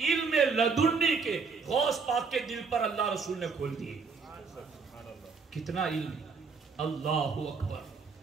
لدنی کے غوث پاک کے دل پر اللہ رسول نے کھول دیے. کتنا علم. اللہ اکبر.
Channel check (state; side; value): quieter; left; 5.0 dB